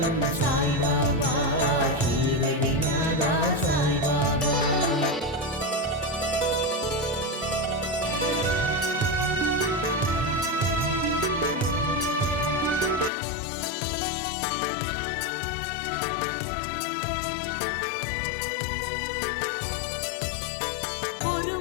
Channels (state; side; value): drops out; right; at 13.1 s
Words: சாய்பாபா ஷீரடிநாதா சாய்பாபா ஒரு